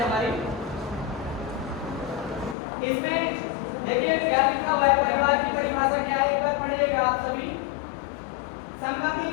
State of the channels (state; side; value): drops out; right; at 2.6 s